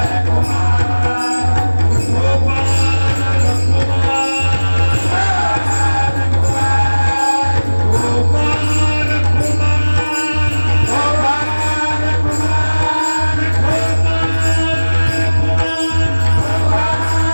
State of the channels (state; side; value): inverted; both; correlation -1.00